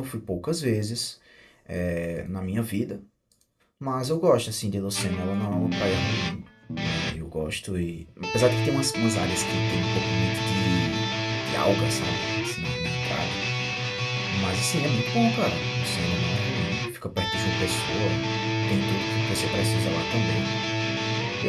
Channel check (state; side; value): identical; both; correlation 1.00